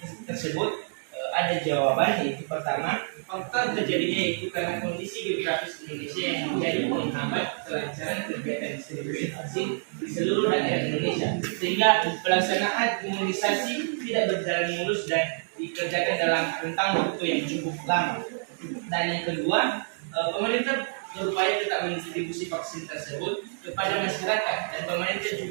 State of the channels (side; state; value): left; silent; 60 dB below the other